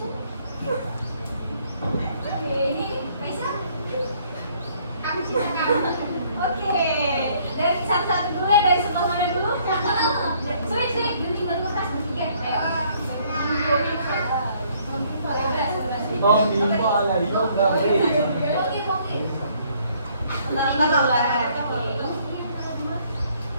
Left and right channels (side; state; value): both; inverted; correlation -0.64